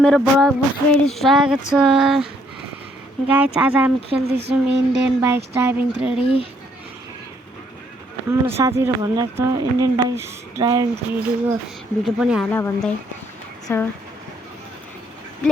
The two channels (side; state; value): both; normal; correlation 0.68